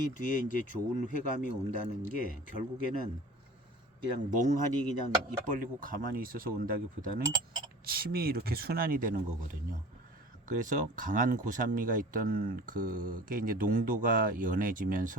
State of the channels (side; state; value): both; normal; correlation 0.41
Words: 뒤에 이제 좋은 회감이 온다는 게 결국에는 그냥 멍하니 그냥 입 벌리고 가만히 있어서 온다기보다는 침이 이렇게 순환이 되는 거거든요. 그래서 강한 고산미가 있던 그게 이제 농도가